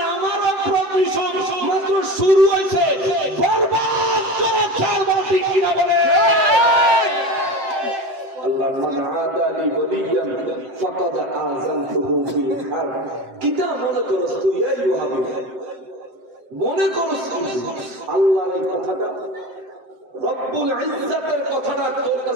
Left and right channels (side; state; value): left; late; 7.7 ms